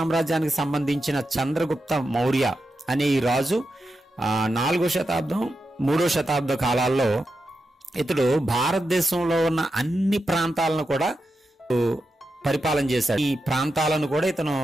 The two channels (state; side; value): normal; both; correlation 0.88